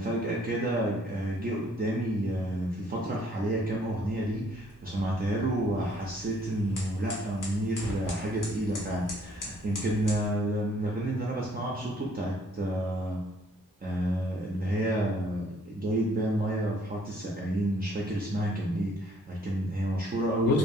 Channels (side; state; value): both; normal; correlation 0.62